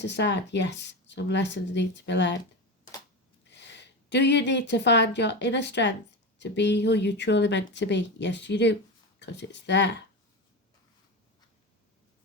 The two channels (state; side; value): normal; both; correlation 0.21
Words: aside? Yes, some lessons need to be learned. Do you need to find your inner strength to be who you truly meant to be? Yes, you do, because it's there.